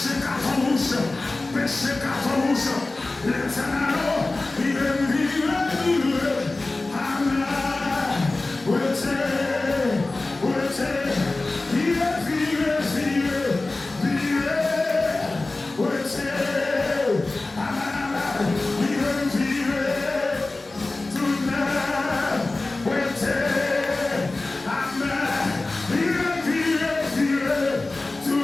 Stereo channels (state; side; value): quieter; right; 3.1 dB